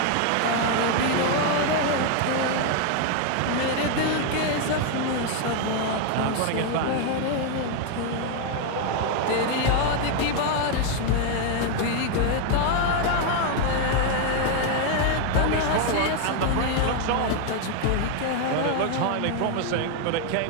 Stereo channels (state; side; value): different; both; correlation 0.01